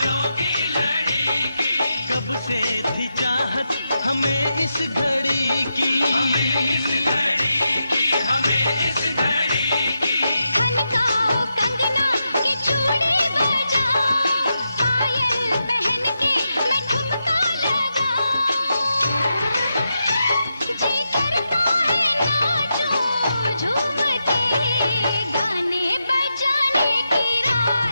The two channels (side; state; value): both; inverted; correlation -0.87